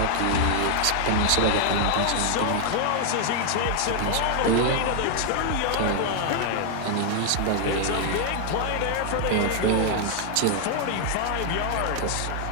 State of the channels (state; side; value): different; both; correlation 0.00